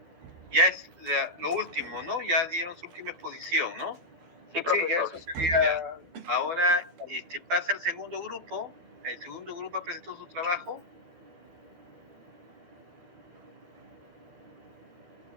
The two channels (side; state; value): left; late; 12 ms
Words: Ya es lo último, ¿no? Ya dieron su última exposición, ¿no? Sí, profesor. Sí, ya eso sería... Ya. Ahora pasa el segundo grupo. El segundo grupo presentó su trabajo.